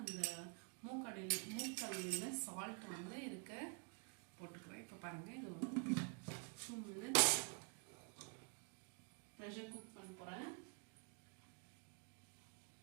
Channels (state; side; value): quieter; left; 39.0 dB